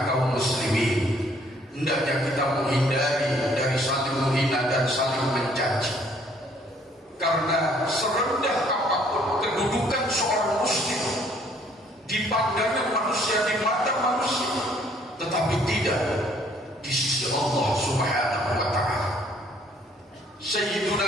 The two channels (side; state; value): both; normal; correlation 0.62